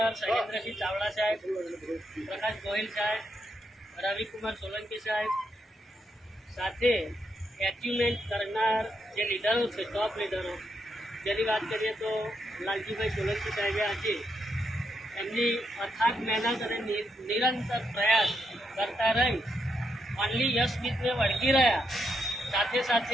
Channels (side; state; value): both; normal; correlation 0.80